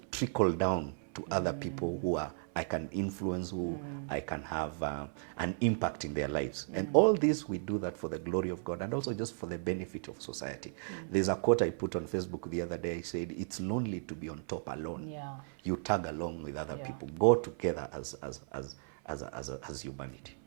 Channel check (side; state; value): left; silent; 54 dB below the other